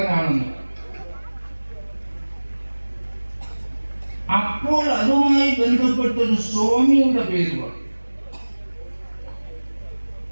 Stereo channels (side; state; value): both; inverted; correlation -1.00